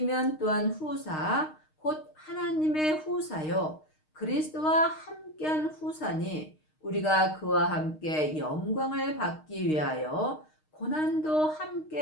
또한 후사 곧 하나님의 후사요 그리스도와 함께한 후사니 우리가 그와 함께 영광을 받기 위하여 고난도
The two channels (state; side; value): late; right; 6.5 ms